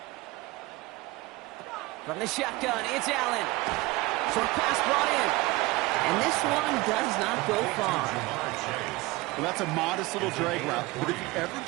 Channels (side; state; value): left; quieter; 21.6 dB